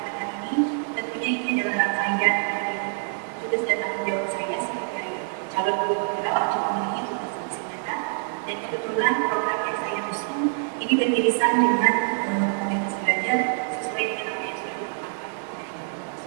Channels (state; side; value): silent; left; digital silence